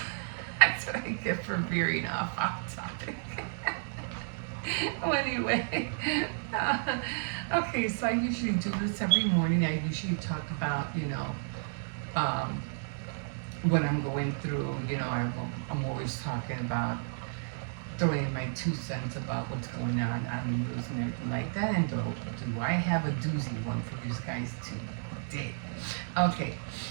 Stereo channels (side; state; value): left; silent; digital silence